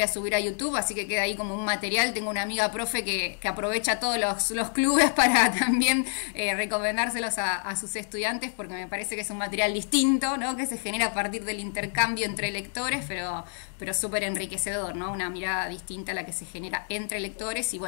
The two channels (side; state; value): right; silent; digital silence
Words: a subir a YouTube, así que queda ahí como un material. Tengo una amiga profe que aprovecha todos los clubes para también recomendárselos a sus estudiantes, porque me parece que es un material distinto, ¿no? Que se genera a partir del intercambio entre lectores, pero súper enriquecedor, ¿no? Una mirada distinta a la que se genera entre lectores y,